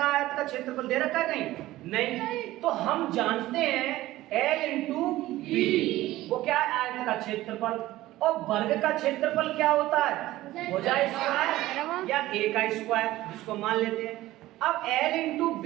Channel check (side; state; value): left; quieter; 16.3 dB